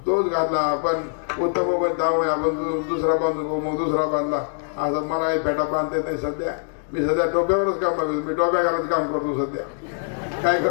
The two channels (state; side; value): silent; right; digital silence